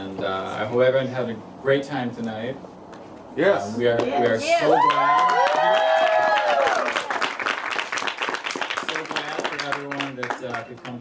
I hope everyone had a great time tonight. Yes. We are so glad. So glad for everyone that could come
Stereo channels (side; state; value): both; identical; correlation 1.00